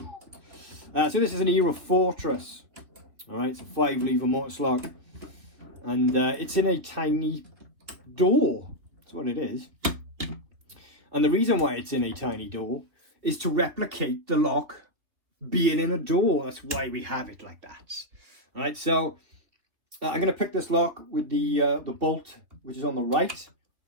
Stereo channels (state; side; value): late; left; 3.2 ms